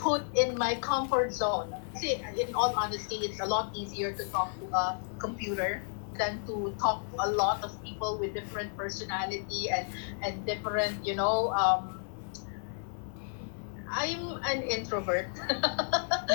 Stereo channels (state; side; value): silent; right; digital silence